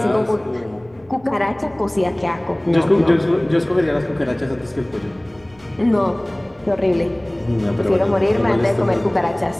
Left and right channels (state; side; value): noise; right; rumble, 29 dB below the sound